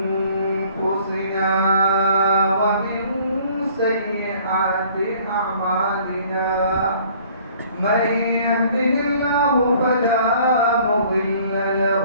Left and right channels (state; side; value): inverted; both; correlation -0.56